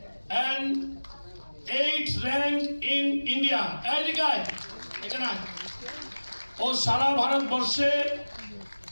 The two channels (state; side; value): inverted; both; correlation -1.00